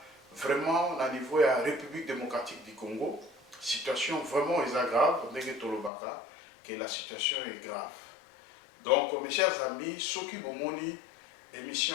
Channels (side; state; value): right; drops out; at 5.9 s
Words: vraiment, au niveau de la République démocratique du Congo, situation vraiment est grave, que la situation est grave. Donc, mes chers amis, Soki Bomoni,